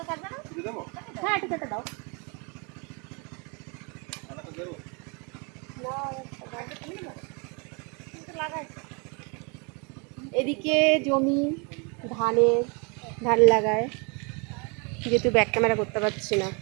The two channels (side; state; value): left; quieter; 33.3 dB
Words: হ্যাঁ, একটু কেটে দাও। এদিকে জমি ধান লাগায়, যেহেতু ব্যাক ক্যামেরা করতে পারছি না,